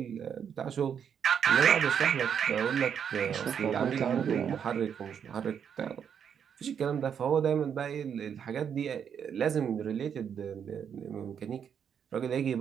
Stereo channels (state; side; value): quieter; left; 7.9 dB